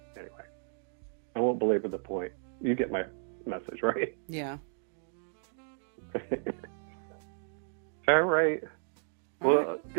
Anyway, I won't belabor the point. You get my message, right? Yeah. All right. Well,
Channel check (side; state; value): left; silent; 56 dB below the other